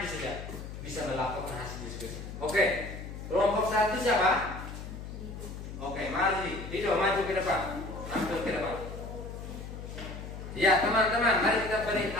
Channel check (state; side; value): noise; left; hum, 10 dB below the sound